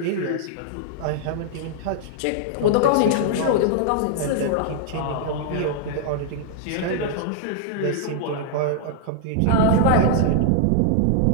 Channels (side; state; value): both; different; correlation -0.01